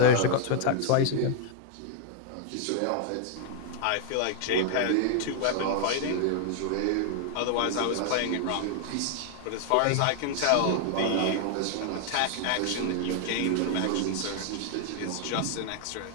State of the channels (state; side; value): different; both; correlation -0.01